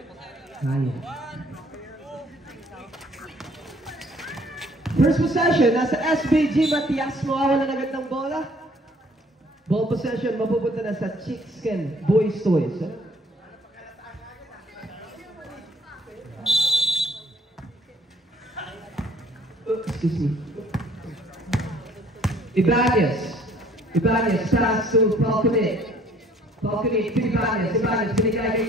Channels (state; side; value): normal; both; correlation 0.59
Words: First possession, nasa SBG Matias, mawawalan agad ng bola. Ball possession, mapupunta na sa Chickskin Boys Toys. Excuse me. Ibanez, pass to Falconet. Falconet to Ibanez, binigay